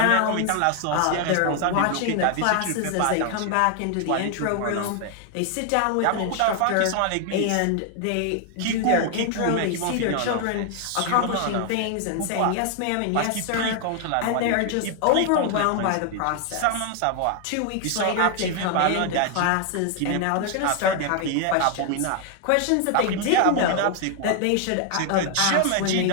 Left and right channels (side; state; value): both; different; correlation 0.00